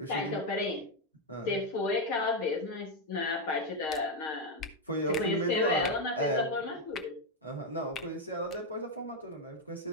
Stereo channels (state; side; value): normal; both; correlation 0.04